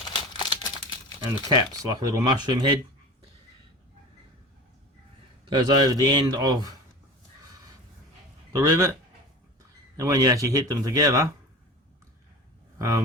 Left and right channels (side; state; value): both; normal; correlation 0.35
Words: And the cap's like a little mushroom head. Goes over the end of the rivet, and when you actually hit them together,